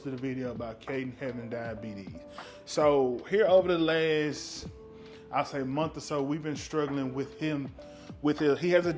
a video about Caden having diabetes. So here over the last, I'll say month or so, we've been struggling with him. He has a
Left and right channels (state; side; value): identical; both; correlation 1.00